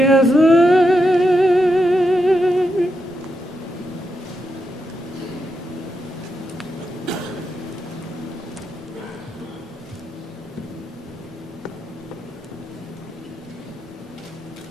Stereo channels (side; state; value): both; normal; correlation 0.85